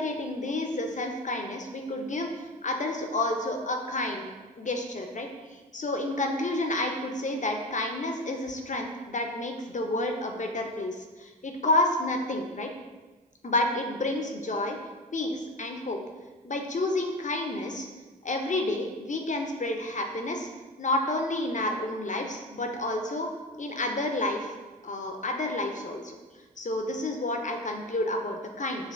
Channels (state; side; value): normal; both; correlation 0.25